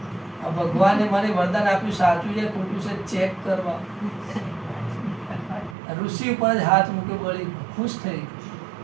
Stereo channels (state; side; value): drops out; left; at 5.8 s